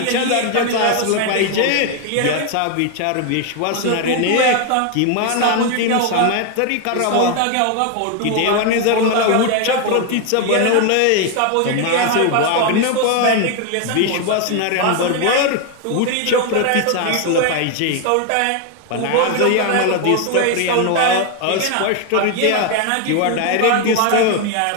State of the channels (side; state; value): both; different; correlation 0.01